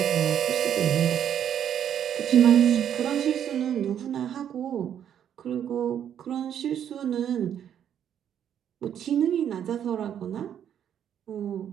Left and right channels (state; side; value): quieter; left; 9.5 dB